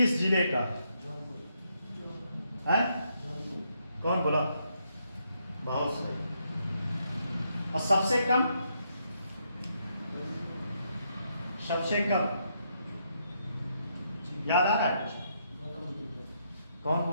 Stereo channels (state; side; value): inverted; both; correlation -0.77